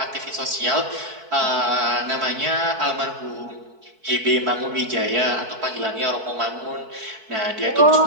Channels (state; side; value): late; left; 4.6 ms